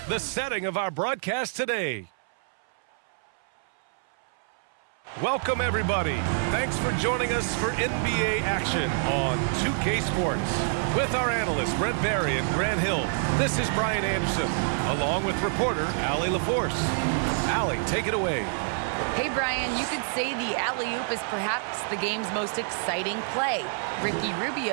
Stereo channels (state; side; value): silent; left; 60 dB below the other